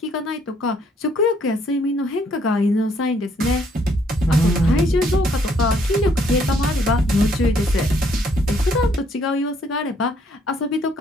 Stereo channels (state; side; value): normal; both; correlation 0.67